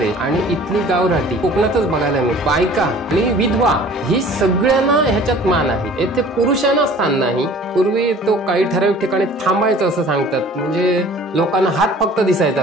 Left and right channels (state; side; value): normal; both; correlation 0.48